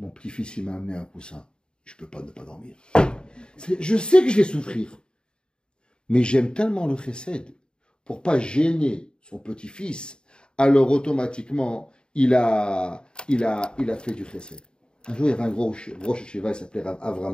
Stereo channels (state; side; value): late; right; 0.049 ms